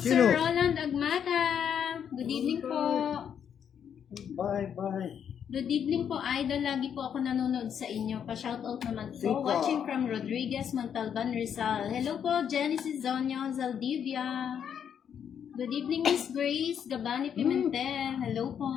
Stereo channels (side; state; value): right; quieter; 8.3 dB